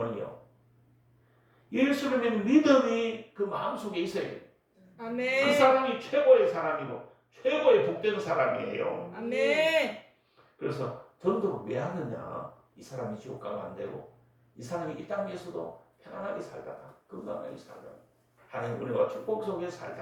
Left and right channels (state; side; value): identical; both; correlation 1.00